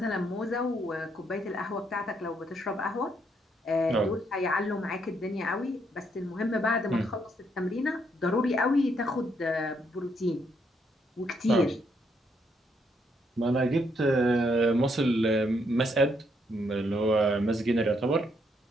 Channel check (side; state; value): both; normal; correlation 0.74